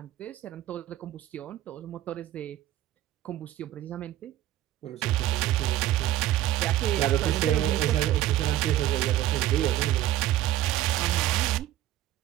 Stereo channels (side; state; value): left; quieter; 13.6 dB